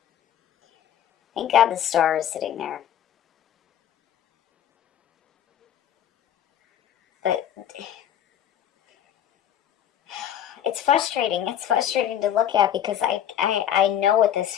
thank God the Star is sitting there. But it's frustrating. It's frustrating to look at because I know what this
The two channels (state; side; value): quieter; right; 10.3 dB